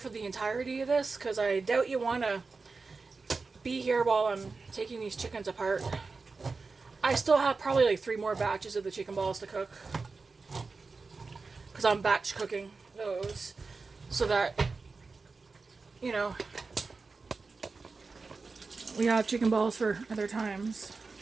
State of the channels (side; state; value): left; quieter; 4.2 dB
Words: the entirety of this because I doubt you want to be here while I'm taking these chickens apart. I still have probably like 3 more batches of the chicken balls to cook because I'm batch cooking those so that, you know, we have chicken balls for other times.